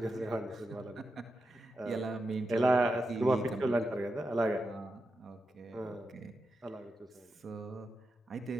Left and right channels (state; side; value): normal; both; correlation 0.88